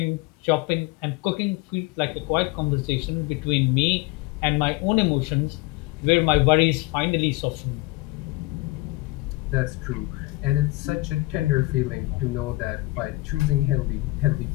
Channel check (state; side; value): quieter; right; 21.3 dB